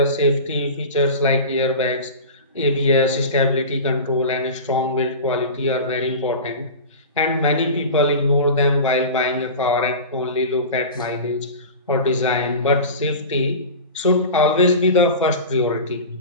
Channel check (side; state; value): both; inverted; correlation -0.31